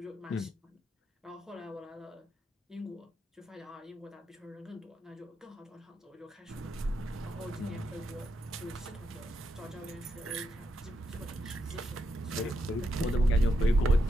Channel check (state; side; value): normal; both; correlation 0.81